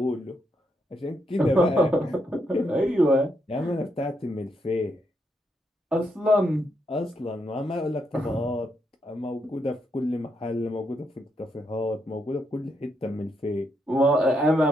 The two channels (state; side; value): normal; both; correlation 0.79